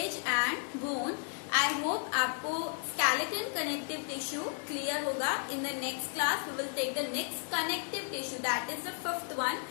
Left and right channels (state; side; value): silent; right; 55 dB below the other